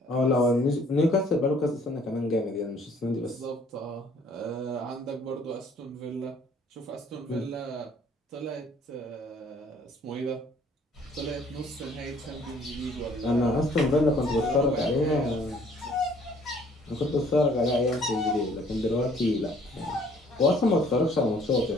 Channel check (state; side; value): normal; both; correlation 0.59